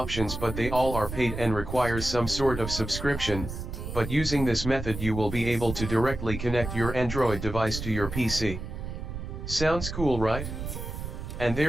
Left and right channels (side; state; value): right; noise; rumble, 7 dB below the sound